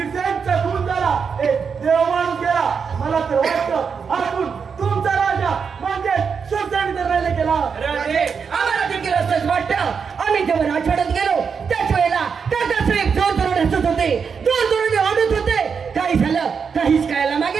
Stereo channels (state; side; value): quieter; left; 6.1 dB